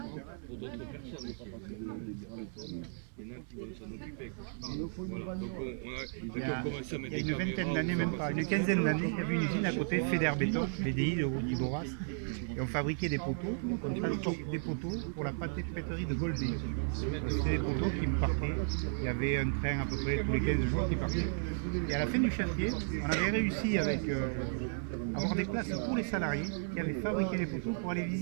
pour d'autres personnes. Il y en a qui vont s'en occuper. Voilà. Donc on a commencé à mettre Il y a une vingtaine d'années, même pas, une quinzaine d'années, il y avait une usine à côté, FEDER Béton, BDI de Boras, et on fabriquait des poteaux, on transportait des poteaux pour la pâtisserie de Goldé. C'était des poteaux qui me partaient, il y avait un train à peu près tous les 15 jours qui partait. Et à la fin du chantier, on avait réussi avec avoir des places pour les salariés qui avaient fabriqué les poteaux pour aller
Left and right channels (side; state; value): left; silent; digital silence